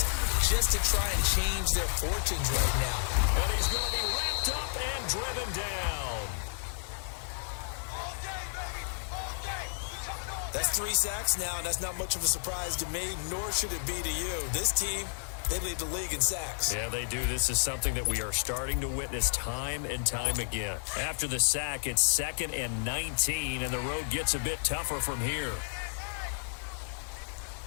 just to try and change their fortunes right now. And he's going to be wrapped up and driven down. That's 3 sacks now, and that's not much of a surprise to me, nor should it be to you. This team They lead the league in sacks. Yeah, they do. This is something that we are starting to witness time and time again. After the sack, it's 2nd and 19, and the road gets a bit tougher from here.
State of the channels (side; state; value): right; silent; digital silence